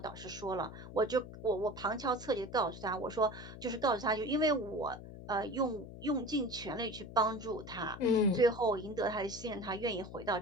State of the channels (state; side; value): noise; left; hum, 13 dB below the sound